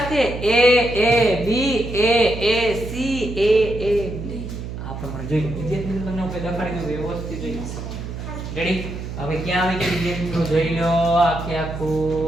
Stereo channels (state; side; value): noise; right; hum, 8 dB below the sound